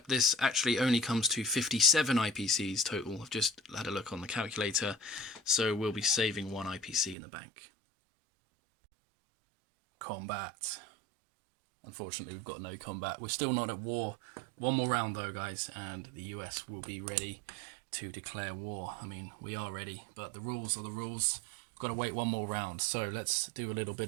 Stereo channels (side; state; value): left; drops out; at 7.2 s